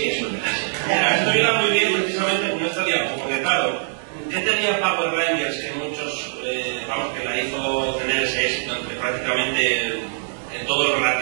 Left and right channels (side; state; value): left; silent; digital silence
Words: es una mierda. Mira, esto iba muy bien precisamente con esta diapositiva, porque claro, yo tenía Power Rangers que muchos, que la hizo tener ese éxito entre prácticamente todo el